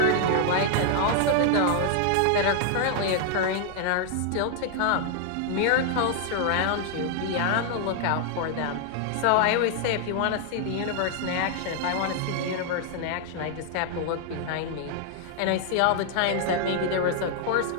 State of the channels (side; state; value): both; different; correlation 0.00